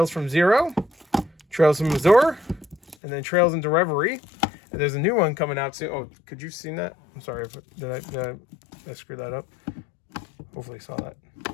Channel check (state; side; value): drops out; right; at 3.0 s